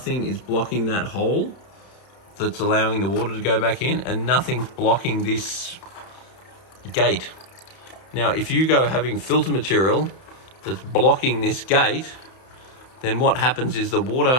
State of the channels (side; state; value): right; late; 31 ms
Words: is blocking that hole that's allowing the water to go back in, and nothing's blocking this gate. Now, if you go having filter material that's blocking this gate, then what happens is the